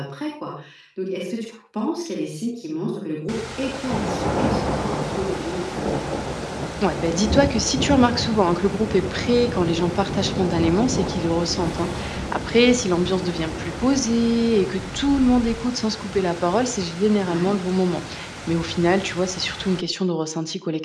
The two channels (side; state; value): both; identical; correlation 1.00